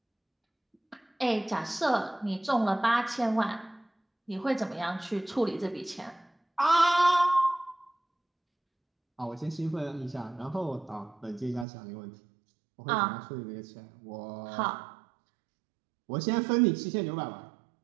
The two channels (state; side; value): drops out; left; at 11.7 s